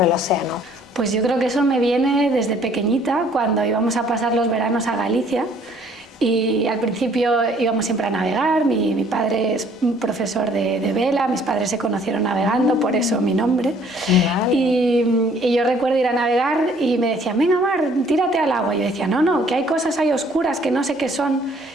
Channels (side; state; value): both; normal; correlation 0.59